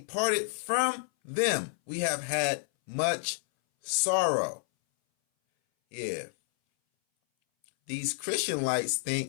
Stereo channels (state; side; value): silent; right; 58 dB below the other